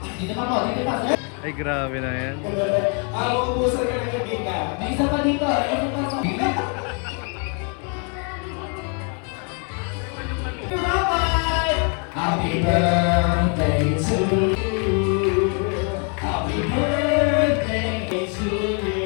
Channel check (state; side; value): quieter; right; 38.3 dB